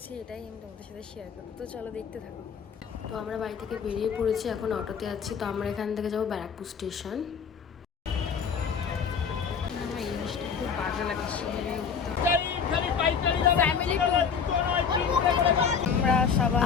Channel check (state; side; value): quieter; right; 6.5 dB